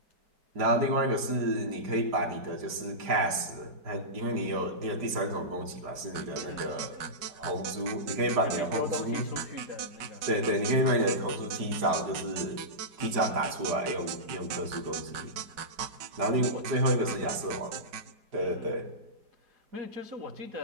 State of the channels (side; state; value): left; late; 4.9 ms